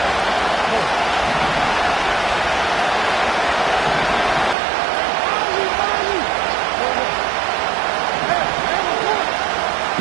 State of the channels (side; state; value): left; drops out; at 4.5 s